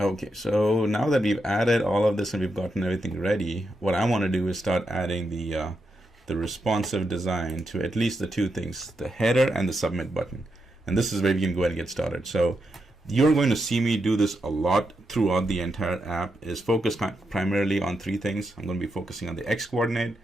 so now that we've added all of this and we've gotten everything ready, what I want to do is start adding the responsive design to at least the two things, the header and the submit button. And this is where we can go ahead and get started. So you're going to see me do this a lot throughout the entire app, is focused primarily on three things. I'm going to be focusing on the X coordinate.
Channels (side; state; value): both; normal; correlation 0.84